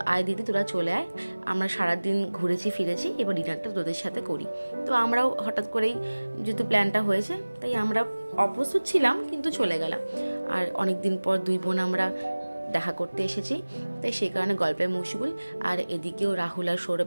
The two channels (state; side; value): inverted; both; correlation -1.00